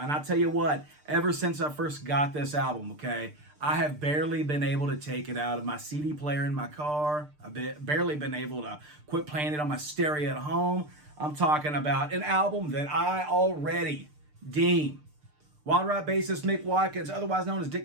I'll tell you what, ever since I first got this album, okay, I have barely been able to take it out of my CD player in my car. I've barely been able to quit playing it on my stereo at home. I'm talking about an album that I already deem, WYLD RYDE bassist Mick Watkins, otherwise known as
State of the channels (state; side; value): late; left; 6.7 ms